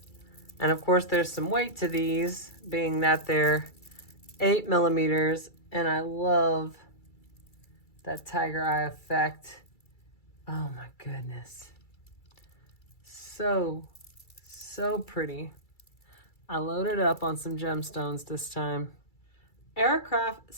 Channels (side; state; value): right; late; 2.3 ms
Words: And of course there's some weight to these, being that they're 8 millimeters, and I love that tiger eye effect. Oh my goodness. So pretty. I loaded up on some gemstones this time. Aircraft